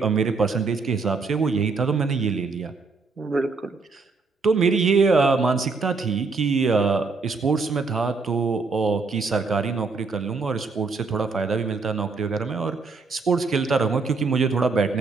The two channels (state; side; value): quieter; left; 4.3 dB